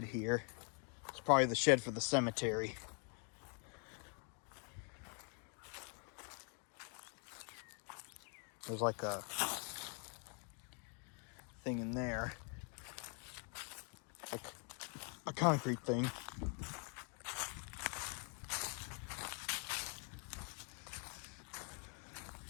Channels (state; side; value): quieter; right; 39.3 dB